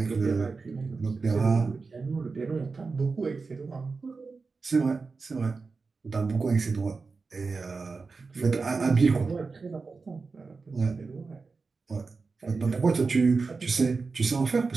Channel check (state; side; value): quieter; left; 4.4 dB